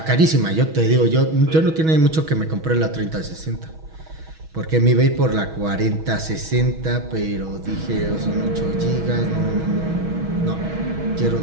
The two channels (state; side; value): late; left; 6.3 ms